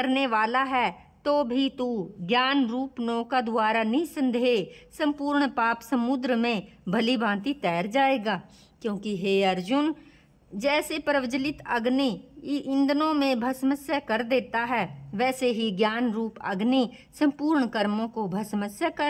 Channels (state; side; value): identical; both; correlation 1.00